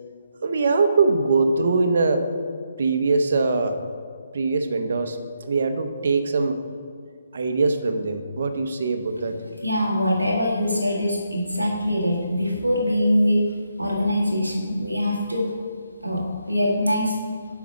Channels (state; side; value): inverted; both; correlation -0.81